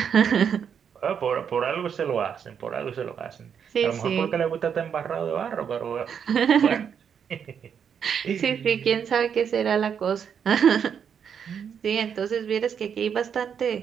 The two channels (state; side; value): quieter; left; 7.6 dB